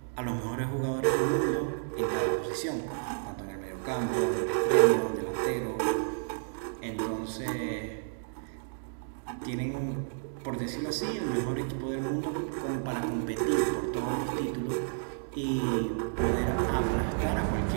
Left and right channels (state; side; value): silent; left; digital silence